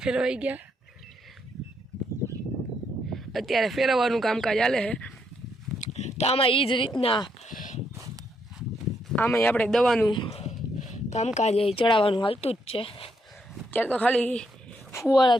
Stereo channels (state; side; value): normal; both; correlation 0.76